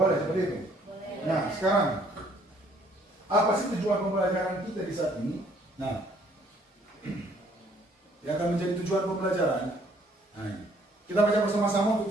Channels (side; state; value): both; normal; correlation 0.62